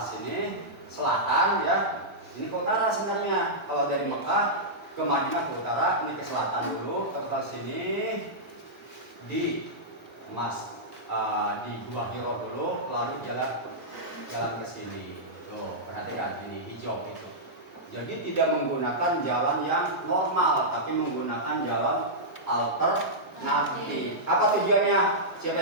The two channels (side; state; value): both; normal; correlation -0.11